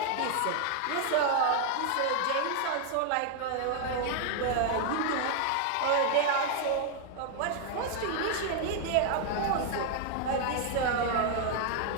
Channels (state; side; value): different; both; correlation 0.00